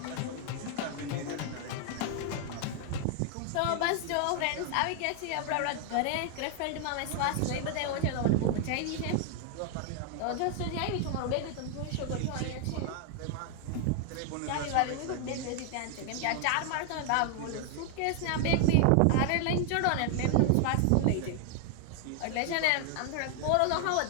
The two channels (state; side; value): different; both; correlation 0.00